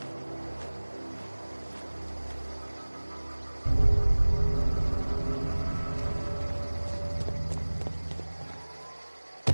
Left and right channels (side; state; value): both; inverted; correlation -1.00